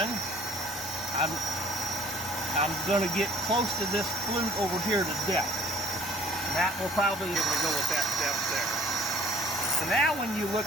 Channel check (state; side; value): normal; both; correlation 0.54